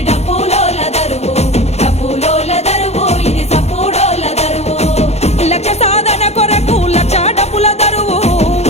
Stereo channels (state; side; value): late; right; 0.31 ms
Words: డప్పులోళ్ళ దరువు డప్పులోళ్ళ దరువు ఇది సప్పుడోళ్ళ దరువు లక్ష సాధన కొరకు లక్ష డప్పుల దరువు